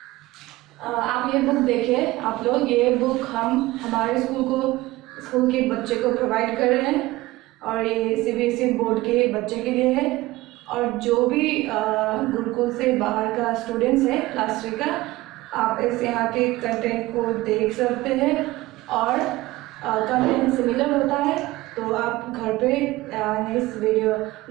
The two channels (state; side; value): quieter; left; 18.9 dB